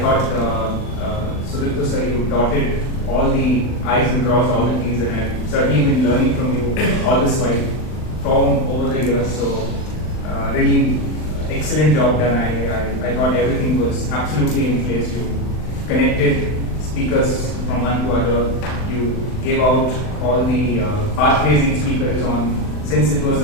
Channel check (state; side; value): late; right; 39 ms